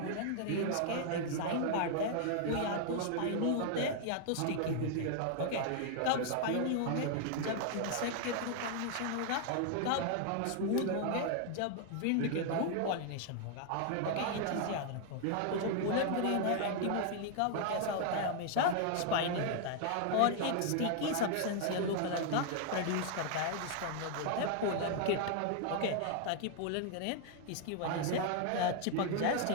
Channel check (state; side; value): different; both; correlation 0.00